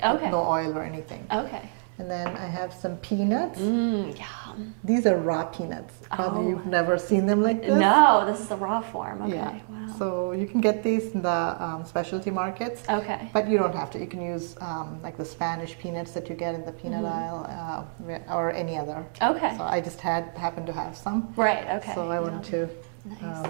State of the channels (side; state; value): left; silent; digital silence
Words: with Okay. No oil or anything. Okay. And then I have some peanuts. Yum. These are raw peanuts. Probably Oh. you've never seen them like this. No, this is the raw form. Okay, Yeah. wow. So you can get these in the specialty markets. Okay. But you don't have to. You can use like the Spanish peanuts that you get in the peanut aisle or any other. Okay. So I just happened to have some. Right, okay. So I want to Nice.